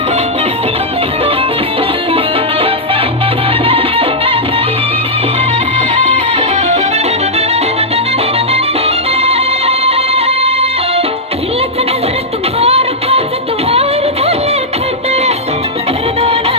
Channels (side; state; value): both; normal; correlation -0.07